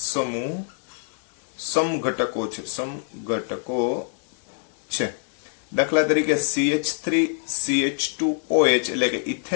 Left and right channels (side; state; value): right; silent; digital silence